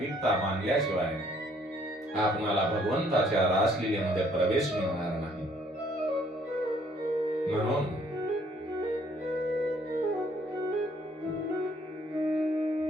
मानल्याशिवाय आपणाला भगवंताच्या रासलीलेमध्ये प्रवेश मिळणार नाही. म्हणून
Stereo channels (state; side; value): normal; both; correlation 0.63